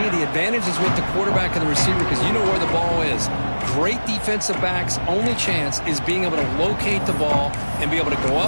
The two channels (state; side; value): inverted; both; correlation -1.00